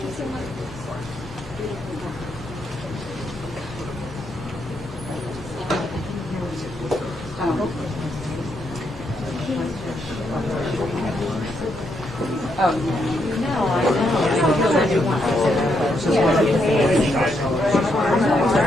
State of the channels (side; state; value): both; normal; correlation 0.78